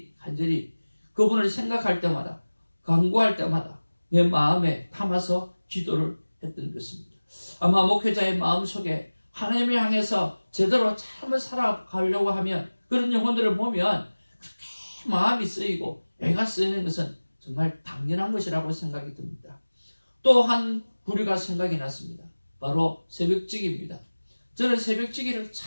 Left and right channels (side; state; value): both; inverted; correlation -1.00